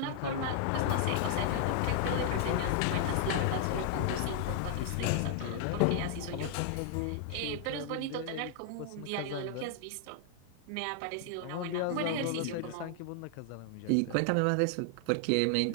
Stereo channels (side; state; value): both; different; correlation 0.00